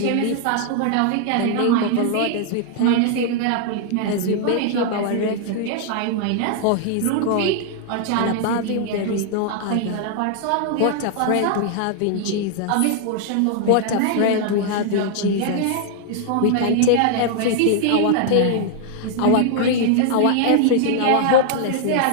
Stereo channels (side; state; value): both; different; correlation 0.00